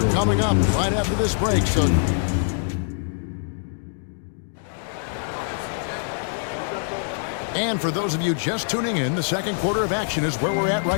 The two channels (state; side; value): silent; right; digital silence